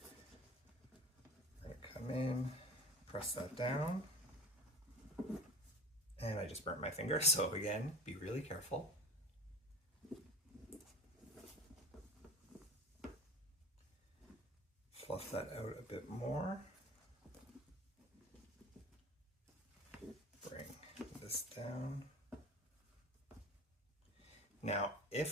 gonna come in, press that down, and I just burnt my finger, so again, be really careful. Fluff that out a bit more. Bring this down. Now,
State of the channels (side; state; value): both; normal; correlation 0.35